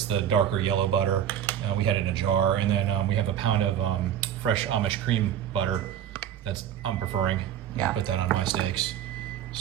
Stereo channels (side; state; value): left; quieter; 10.2 dB